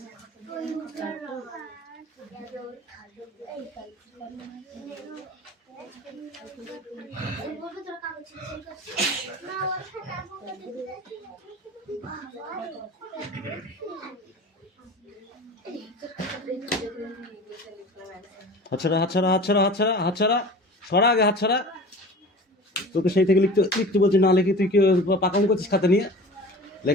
হাতছাড়া হাতছাড়া হাতছাড়া হাতছাড়া হাতছাড়া, সরা আগে হাতছাড়া। তোকে সেই থেকে লিখতে লিখতে বলছি, না লিখে তুই কি পাকাম করছিস খাতা নিয়ে?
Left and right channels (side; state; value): both; normal; correlation 0.38